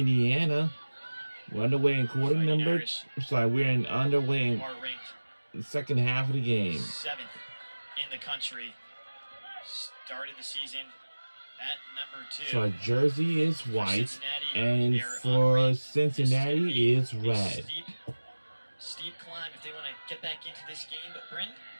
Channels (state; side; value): inverted; both; correlation -1.00